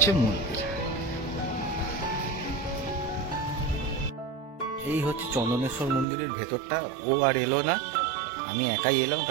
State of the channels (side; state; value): left; drops out; at 6.1 s